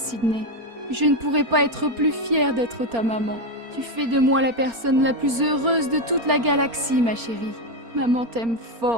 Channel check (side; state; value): left; late; 4.3 ms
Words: Je ne pourrais pas être plus fière d'être ta maman. Tu fais de moi la personne la plus heureuse de toute la galaxie, ma chérie. Maman t'aime